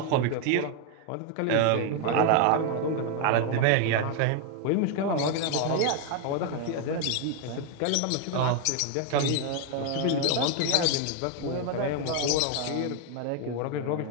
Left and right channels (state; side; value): different; both; correlation 0.01